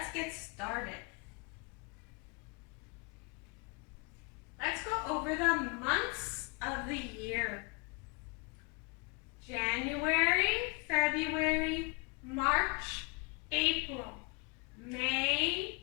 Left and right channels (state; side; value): quieter; right; 30.0 dB